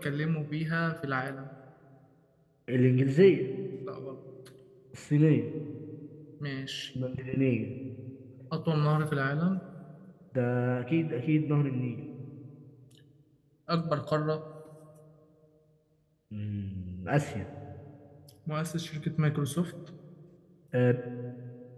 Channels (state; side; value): identical; both; correlation 1.00